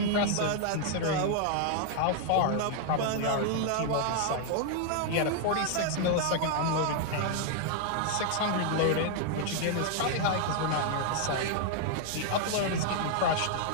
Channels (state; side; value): different; both; correlation 0.00